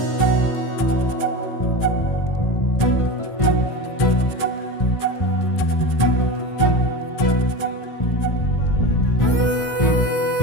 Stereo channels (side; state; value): right; late; 1.5 ms